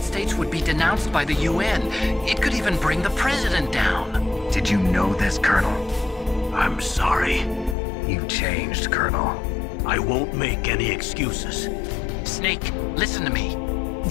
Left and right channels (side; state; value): right; drops out; at 7.8 s